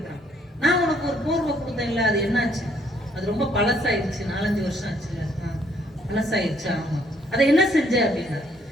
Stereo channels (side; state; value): both; normal; correlation 0.67